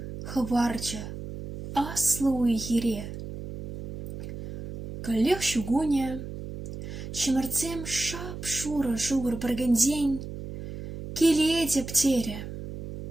хварча аслу ихире. Коллег шугуня, чемерцем шапшура шугар баргандень, келеде птере.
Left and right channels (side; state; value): right; noise; hum, 9 dB below the sound